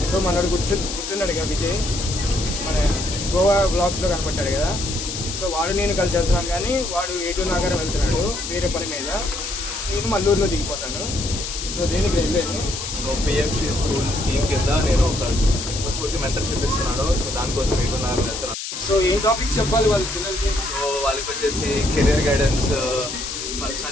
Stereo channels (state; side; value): noise; left; hiss, 6 dB below the sound